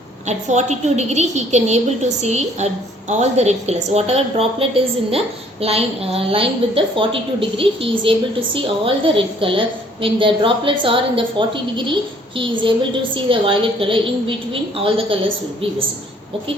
at 42 degree he can able to see all the red colors. Whatever droplet is in the line with the 42 degree, he is able to see all the red color. When the droplets are in the 40 degree, he is able to see the violet color. In between all the colors will be visible.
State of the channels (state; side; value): normal; both; correlation 0.60